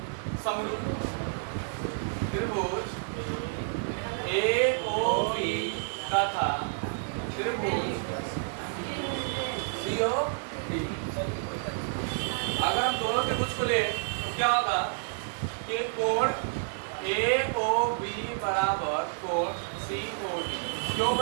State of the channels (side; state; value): left; silent; digital silence